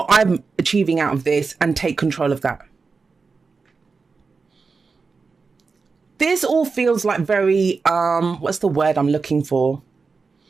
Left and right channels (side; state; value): left; quieter; 4.6 dB